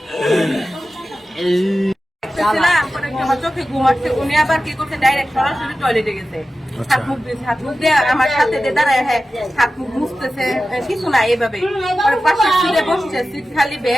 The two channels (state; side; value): normal; both; correlation 0.94